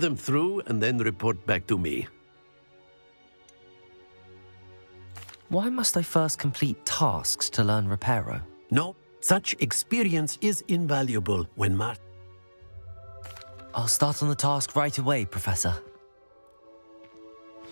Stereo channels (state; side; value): inverted; both; correlation -1.00